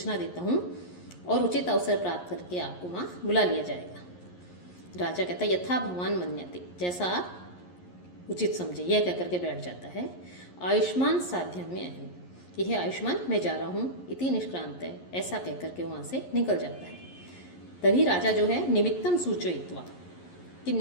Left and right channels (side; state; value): right; late; 11 ms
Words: देता हूँ और उचित अवसर प्राप्त करके आपको वहाँ बुला लिया जाएगा। राजा कहता है, यथा भगवान मन्यते, जैसा आप उचित समझे, यह कहकर के बैठ जाता है। आयुष्मान साध्यम में अहम, यह आयुष्मान मैं जा रहा हूँ, इति निष्क्रांत है, ऐसा कहकर के वहाँ से निकल जाता है। तभी राजा जो है निमित्तम सूचयित्वा, कि